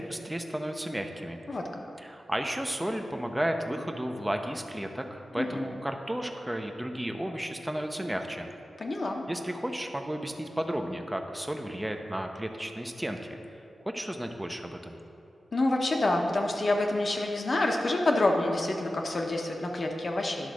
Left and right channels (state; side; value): normal; both; correlation 0.94